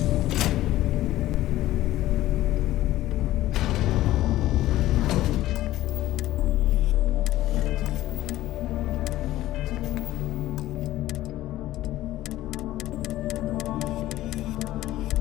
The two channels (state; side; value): quieter; right; 15.2 dB